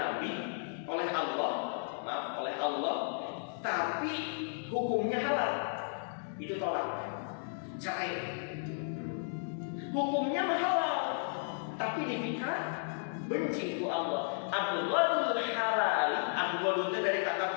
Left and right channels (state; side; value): silent; right; digital silence